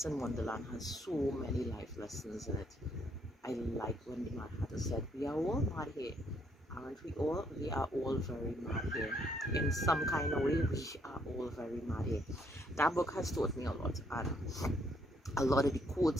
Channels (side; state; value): both; normal; correlation 0.70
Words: in Wonderland has so many life lessons in it. I like when the Mad Hatter said, "We are all mad here, aren't we all? We are all very mad here. In some kind of way, we are all very mad here." That book has taught me a lot, and a lot of the